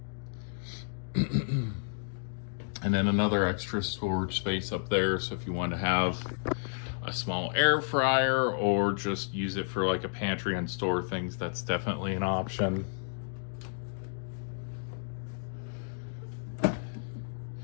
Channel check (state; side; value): silent; right; digital silence